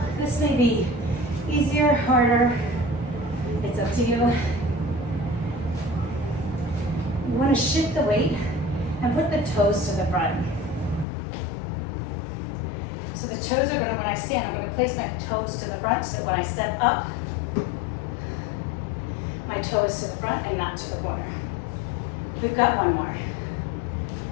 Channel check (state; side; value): drops out; right; at 11.1 s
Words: this may be easier, harder, it's up to you. You want to shift the weight and put the toes to the front. So the toes are going to, when I stand, I'm going to place my toes to the front so that when I step up, my toe is to the front and not to the corner. We've got one more.